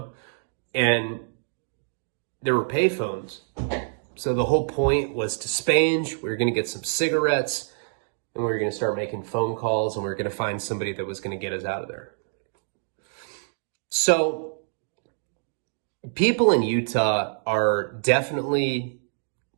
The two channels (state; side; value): silent; left; digital silence